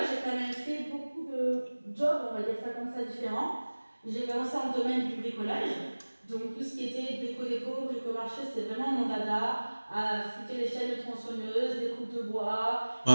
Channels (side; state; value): both; inverted; correlation -1.00